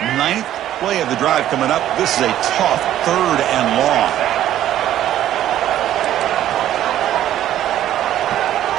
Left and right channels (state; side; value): quieter; left; 12.2 dB